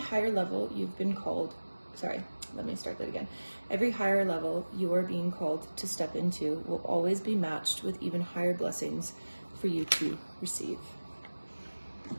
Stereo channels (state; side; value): inverted; both; correlation -1.00